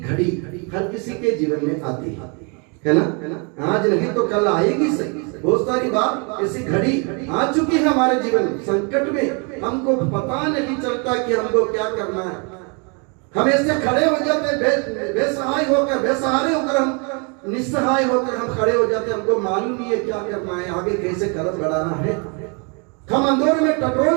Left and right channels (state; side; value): quieter; left; 34.6 dB